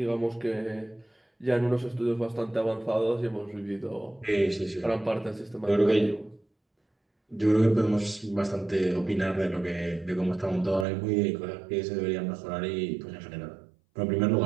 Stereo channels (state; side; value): drops out; left; at 10.9 s